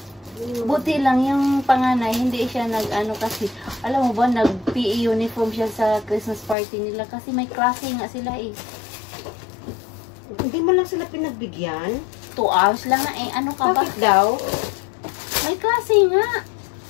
Buti lang yung panganay, hindi siya nag-ano kasi, alam mo ba, nag-PE uniform siya sa Christmas party nila kasi may klase nga sila eh. Hindi mo lang sila pinagbigyan? 2 hours lang nga eh, ano ka ba? Bakit daw? May klase nga.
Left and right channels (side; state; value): right; drops out; at 6.6 s